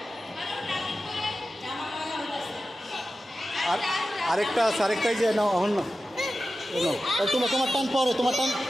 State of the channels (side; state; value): both; normal; correlation 0.93